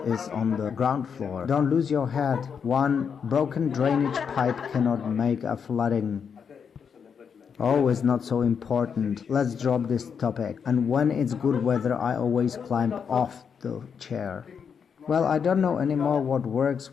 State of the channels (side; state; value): right; quieter; 6.8 dB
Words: on the ground floor. Don't lose your head. One broken drainage pipe cannot make a flooding. Oh, it's not so important. Let's drop this topic. And when it's good weather, I always climb off the chair. Well, I don't know anymore what